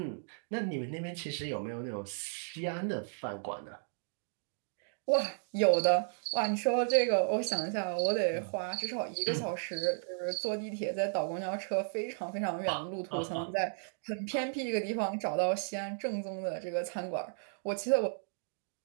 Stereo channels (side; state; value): left; silent; digital silence